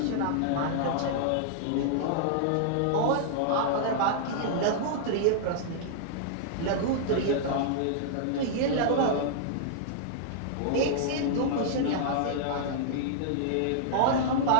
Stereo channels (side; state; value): both; different; correlation -0.01